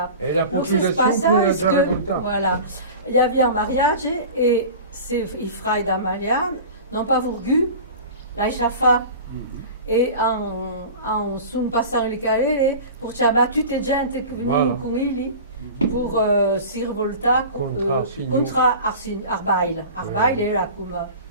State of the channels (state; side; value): inverted; both; correlation -0.36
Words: passava. Et la Donc, c'est ce population qui passage est dans le que, temps. voilà, il y avait un mariage et i frères d'Amalia n'ont pas voulu la chafa. E sono passati le carriere per chiamare tutte gente che venivano con lui per si rivoltare contro Arbail. Arbail era come